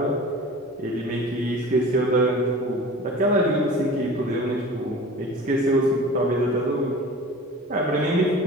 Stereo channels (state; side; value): normal; both; correlation 0.39